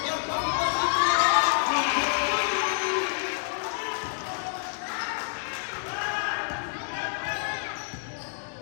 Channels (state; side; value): silent; right; digital silence